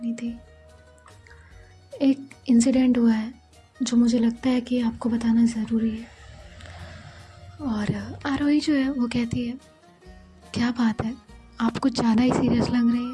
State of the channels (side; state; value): both; identical; correlation 1.00